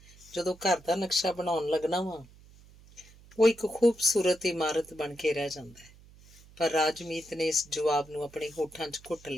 ਜਦੋਂ ਘਰ ਦਾ ਨਕਸ਼ਾ ਬਣਾਉਣ ਲੱਗਣਾ ਵਾਂ ਉਹ ਇੱਕ ਖੂਬਸੂਰਤ ਇਮਾਰਤ ਬਣ ਕੇ ਰਹਿ ਜਾਂਦਾ ਹੈ। ਪਰ ਰਾਜਮੀਤ ਨੇ ਇਸ ਜਵਾਬ ਨੂੰ ਆਪਣੇ ਹੋਠਾਂ 'ਚ ਘੁੱਟ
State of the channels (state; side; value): noise; right; hum, 24 dB below the sound